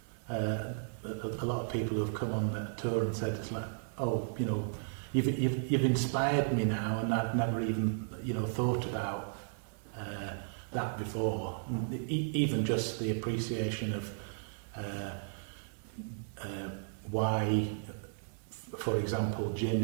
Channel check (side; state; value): left; silent; digital silence